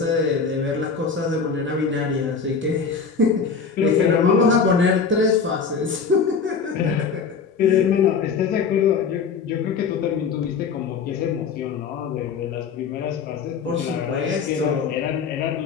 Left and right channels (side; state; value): right; quieter; 5.6 dB